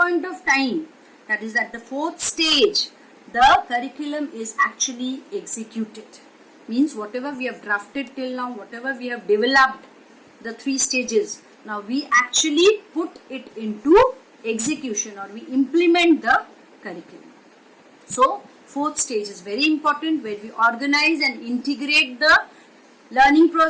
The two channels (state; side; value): identical; both; correlation 1.00